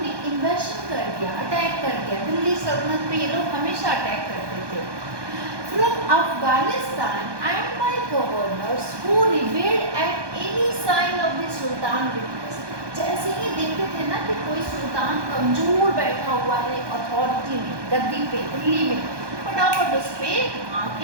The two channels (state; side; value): late; left; 1.2 ms